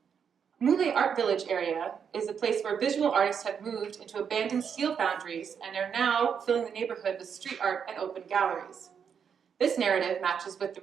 Mule Art Village area is a place where visual artists have moved into abandoned steel foundries and are now filling the neighborhood with street art and open galleries. This narrative matches with the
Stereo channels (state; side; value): quieter; left; 7.2 dB